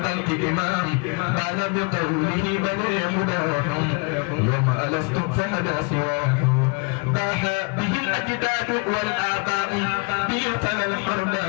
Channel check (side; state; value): right; quieter; 32.5 dB